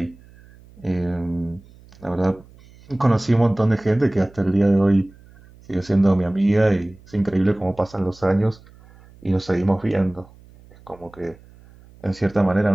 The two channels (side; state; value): right; noise; hum, 25 dB below the sound